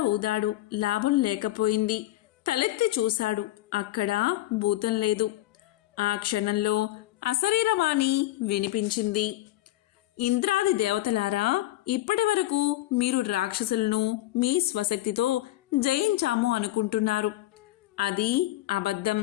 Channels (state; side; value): quieter; right; 16.0 dB